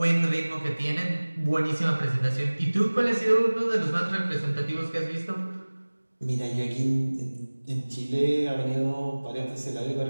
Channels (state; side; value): inverted; both; correlation -1.00